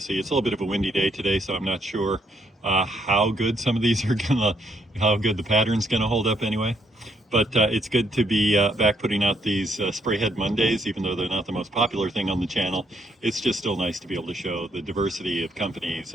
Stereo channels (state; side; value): normal; both; correlation 0.73